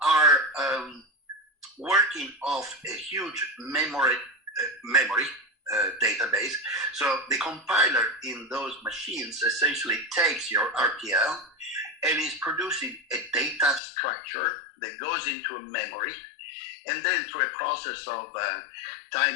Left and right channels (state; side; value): drops out; right; at 13.8 s